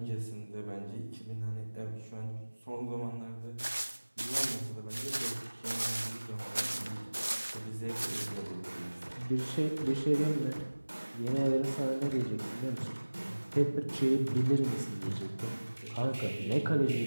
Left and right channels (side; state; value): both; inverted; correlation -1.00